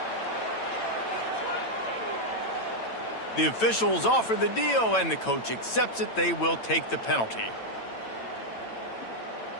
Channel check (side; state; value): right; late; 8.9 ms